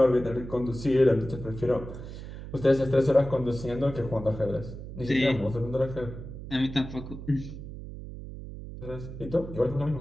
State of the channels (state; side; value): noise; right; hum, 11 dB below the sound